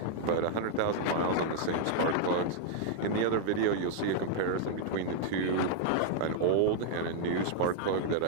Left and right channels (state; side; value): different; both; correlation -0.01